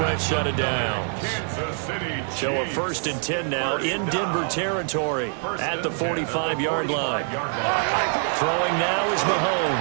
set of downs. So a 1st and 10 now in Denver territory at the 45-yard line. Throwing now is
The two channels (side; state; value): left; silent; 56 dB below the other